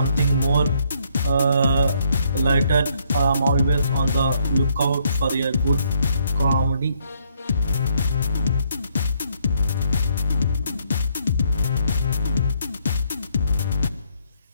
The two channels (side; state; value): both; inverted; correlation -0.70